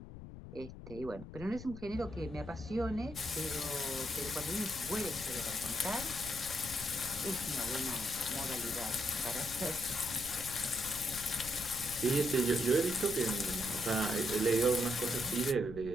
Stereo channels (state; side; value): noise; left; rumble, 13 dB below the sound